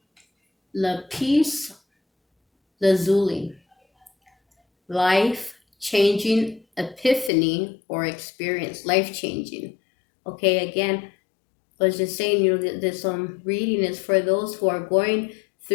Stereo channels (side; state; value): right; drops out; at 7.3 s